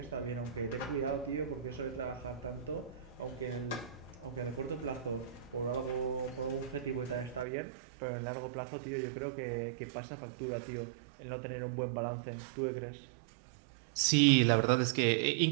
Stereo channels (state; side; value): drops out; left; at 7.5 s